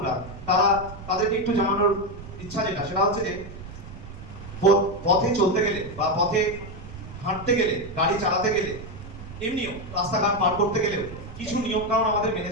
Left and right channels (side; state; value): right; noise; rumble, 13 dB below the sound